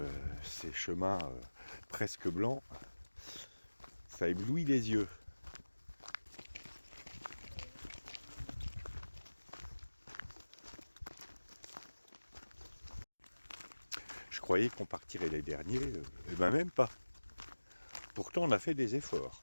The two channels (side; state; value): both; inverted; correlation -1.00